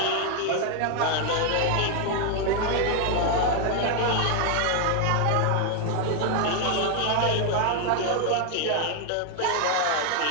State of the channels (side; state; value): both; different; correlation 0.01